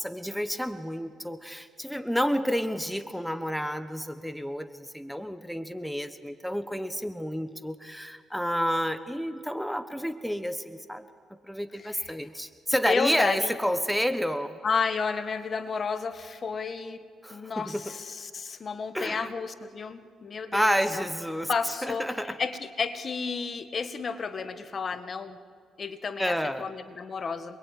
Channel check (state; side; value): normal; both; correlation 0.94